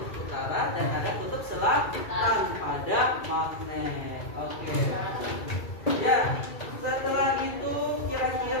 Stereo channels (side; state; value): right; late; 2.3 ms